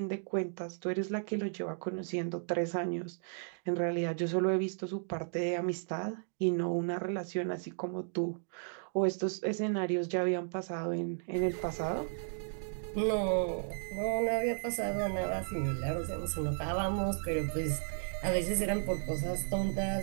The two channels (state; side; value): silent; left; digital silence